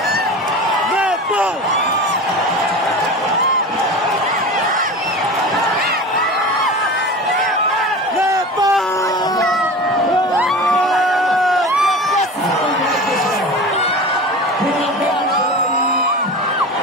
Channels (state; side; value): normal; both; correlation 0.32